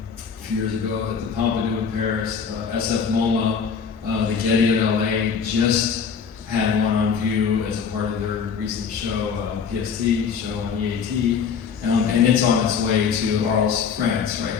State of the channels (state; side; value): quieter; right; 6.4 dB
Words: a few years ago at the Pompidou in Paris. SF MoMA, the Getty at LA just had one on view as a part of their recent show, PST show on E.A.T. And it's on its way to Arles, France right